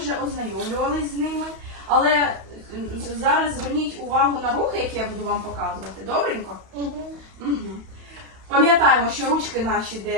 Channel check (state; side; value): late; left; 31 ms